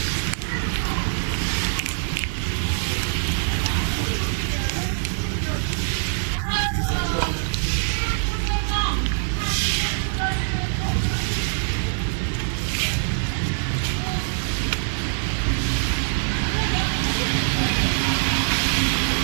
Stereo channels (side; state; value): left; silent; 63 dB below the other